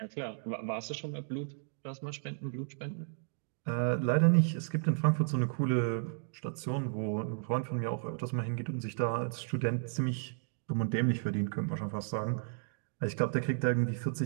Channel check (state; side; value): silent; left; digital silence